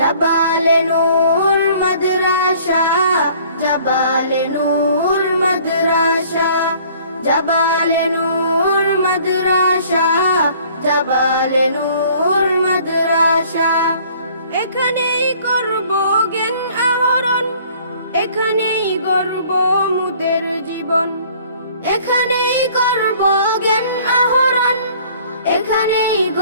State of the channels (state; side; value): inverted; both; correlation -0.55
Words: নূর মাদ্রাসা, জাবালে নূর মাদ্রাসা, জাবালে নূর মাদ্রাসা, জাবালে নূর মাদ্রাসা। এখানেই করব জ্ঞান আহরণ, এখানেই গড়ব মুদের জীবন। এখানেই করব জ্ঞান আহরণ, এখানেই